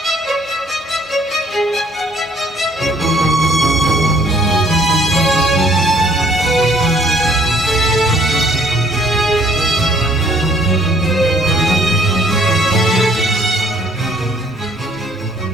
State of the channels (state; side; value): normal; both; correlation 0.61